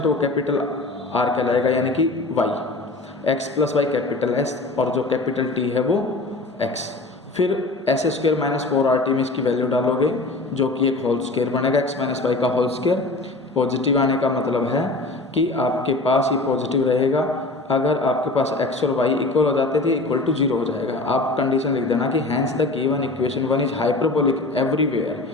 है वो कैपिटल आर कहलाएगा, यानी कि y, x plus y capital S, और जो कैपिटल टी है वो एक्स। फिर एस स्क्वायर माइनस 4RT में इसकी वैल्यू डालोगे जो कि एक होल स्क्वायर बनेगा, एक्स माइनस वाई का होल स्क्वायर। पॉजिटिव आने का मतलब है कि आपके पास ये पॉजिटिव रहेगा, अगर आपके पास x और y इक्वल हो जाते थे इक्वल टू 0 हो जाएगा। आप कंडीशन लिख देना कि hence the given equation 1 is hyperbolic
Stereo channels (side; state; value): right; quieter; 3.1 dB